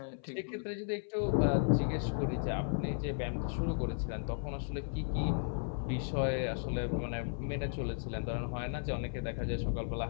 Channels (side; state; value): right; silent; 54 dB below the other